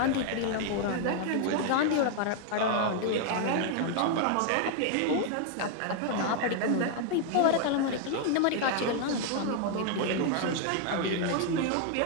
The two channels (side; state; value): both; different; correlation 0.00